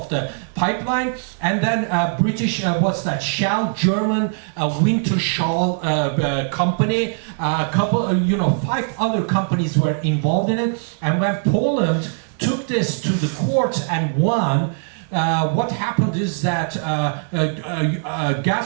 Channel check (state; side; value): silent; left; digital silence